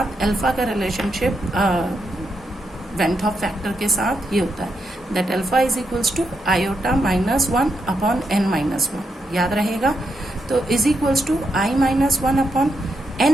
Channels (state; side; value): normal; both; correlation 0.82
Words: अल्फा का रिलेशनशिप वैन हॉफ फैक्टर के साथ ये होता है, that alpha is equals to iota -1 upon n-1, याद रहेगा। तो is equals to i-1 upon